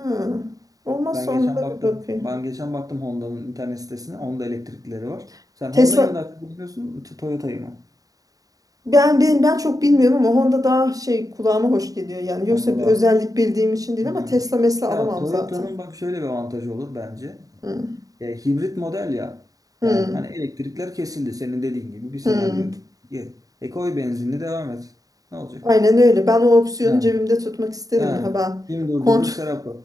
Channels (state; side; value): late; left; 0.17 ms